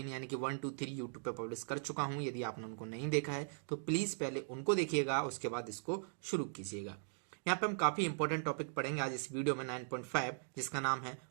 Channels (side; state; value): left; silent; digital silence